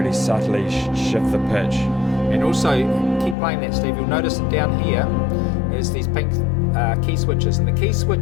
subtly shift the pitch. And also, keep playing that, Steve, you'll notice that down here is these pink key switches, and the key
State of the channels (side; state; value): right; drops out; at 3.4 s